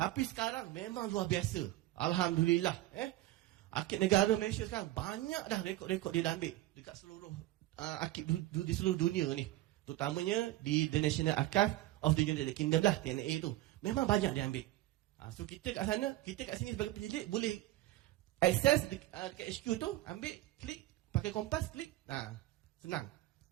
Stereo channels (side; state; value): left; quieter; 16.1 dB